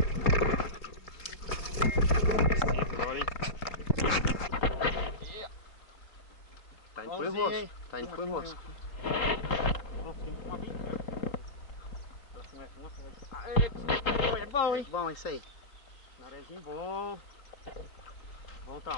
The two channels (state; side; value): late; right; 3.8 ms